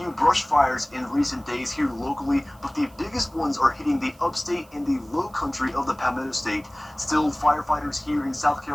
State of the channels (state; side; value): noise; right; hiss, 29 dB below the sound